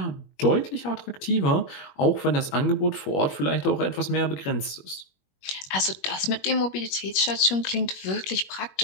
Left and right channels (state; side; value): late; right; 21 ms